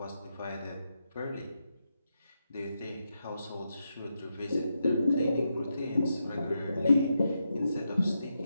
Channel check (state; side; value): inverted; both; correlation -0.85